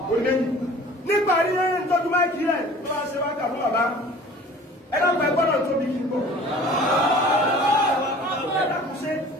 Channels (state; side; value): normal; both; correlation 0.46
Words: ó lẹ́yìn nígbà rí ẹni tọ́jú máìkì rẹ̀ tó bá ṣe wákà fún bàbá ẹ dákun ẹ gbọ́dọ̀ tóbi kí n gbọ́ ẹ dákun ṣe